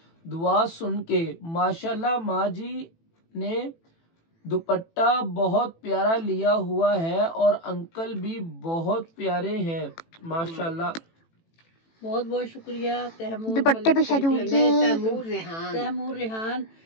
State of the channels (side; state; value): right; late; 18 ms